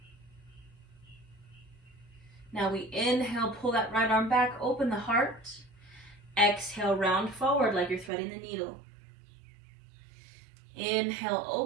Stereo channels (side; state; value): left; drops out; at 8.1 s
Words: Now we inhale, pull that right arm back, open the heart. Exhale, round forward like you're threading the needle. Inhale,